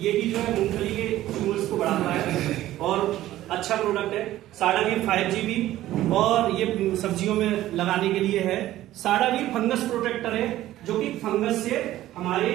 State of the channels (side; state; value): left; quieter; 14.5 dB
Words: भी जो है मूंगफली के ट्यूमर्स को बढ़ाता है और अच्छा प्रोडक्ट है। साडावीर 5GB और ये सब्जियों में लगाने के लिए है। साडावीर फंगस प्रोटेक्टर है, जो कि फंगस से हमारे